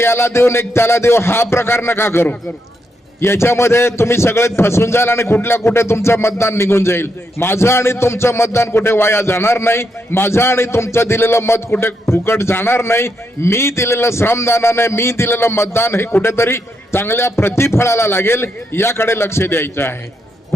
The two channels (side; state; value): both; normal; correlation 0.81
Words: देऊन एक त्याला देऊ हा प्रकार नका करू. याच्यामध्ये तुम्ही सगळे फसून जाल आणि कुठे तुमचं मतदान निघून जाईल. माझं आणि तुमचं मतदान कुठे वाया जाणार नाही. माझं आणि तुमचं दिलेलं मत कुठे फुकट जाणार नाही. मी दिलेलं श्रमदानाने मी दिलेलं मतदान हे कुठेतरी चांगल्या प्रतिफळाला लागेल याकडे लक्ष द्यायचं आहे.